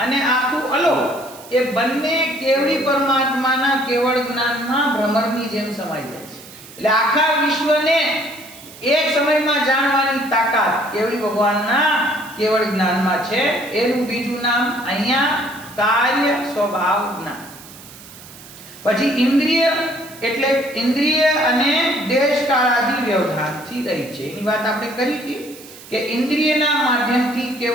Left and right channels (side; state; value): right; noise; hiss, 18 dB below the sound